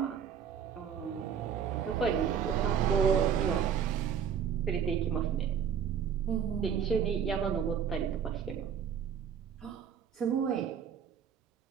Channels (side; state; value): left; quieter; 7.8 dB